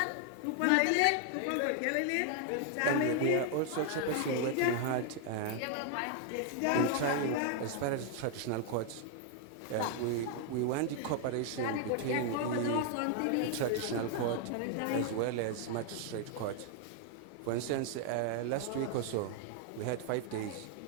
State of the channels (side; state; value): both; different; correlation 0.00